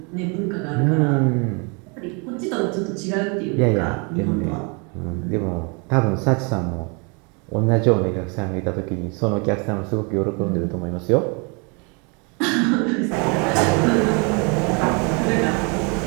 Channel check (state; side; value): quieter; left; 32.9 dB